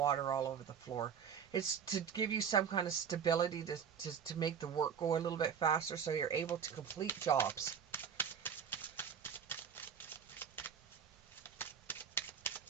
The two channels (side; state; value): left; quieter; 7.4 dB